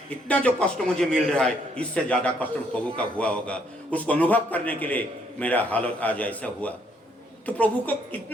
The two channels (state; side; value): normal; both; correlation 0.69